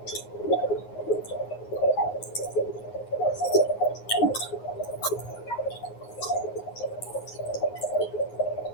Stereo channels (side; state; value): right; late; 9.6 ms